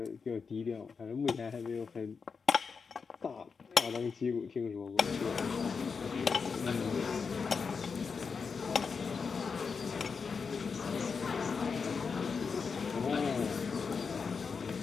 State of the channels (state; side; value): quieter; right; 5.4 dB